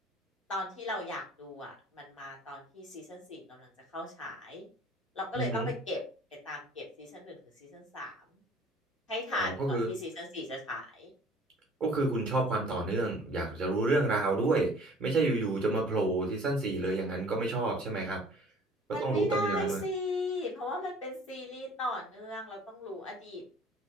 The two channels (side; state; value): both; normal; correlation 0.51